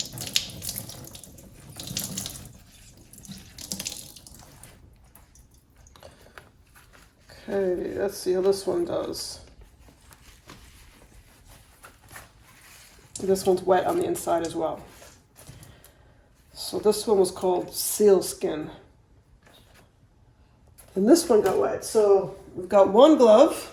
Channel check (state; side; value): identical; both; correlation 1.00